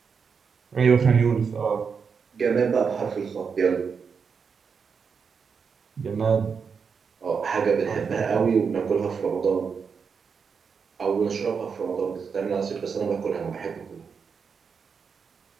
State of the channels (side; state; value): left; quieter; 5.9 dB